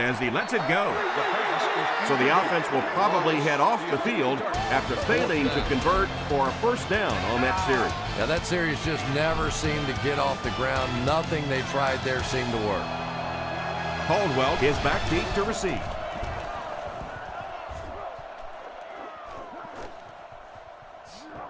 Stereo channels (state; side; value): identical; both; correlation 1.00